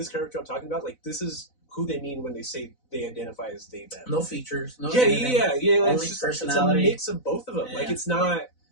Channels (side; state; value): right; late; 4.0 ms